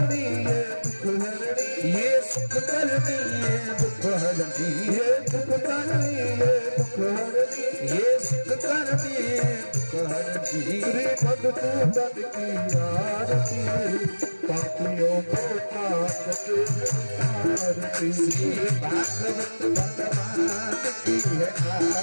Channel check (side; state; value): both; inverted; correlation -1.00